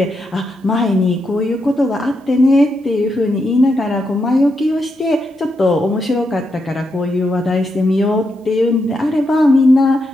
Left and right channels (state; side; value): normal; both; correlation 0.83